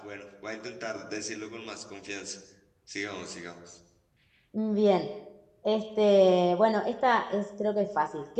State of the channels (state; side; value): identical; both; correlation 1.00